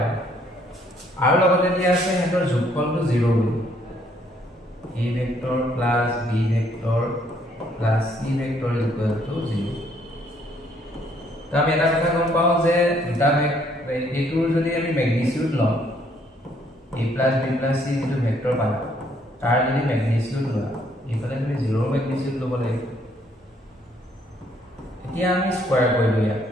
আৰু লগতে দিয়া আছে হেতৰ যোগফলটো 0 বুলি a vector plus b vector plus c vector is equal to 0 তো আমি এটা কথা গম পাও যে দুটা ভেক্টৰ যদি আমি ম্যাগনিটিউড লওঁ a plus b plus c যেটো ভেক্টৰ পালা তাৰ যদি ম্যাগনিটিউড লোৱা ইফালে তুমি 0 ম্যাগনিটিউড লব লাগিব এতিয়া আমি স্কয়াৰ কৰিলো ইয়া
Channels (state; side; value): normal; both; correlation 0.67